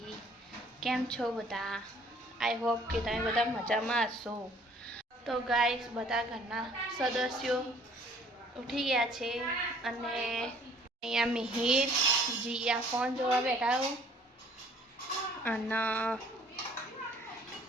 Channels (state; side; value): normal; both; correlation 0.57